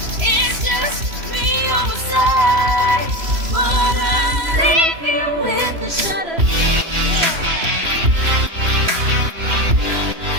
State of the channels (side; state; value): left; late; 3.0 ms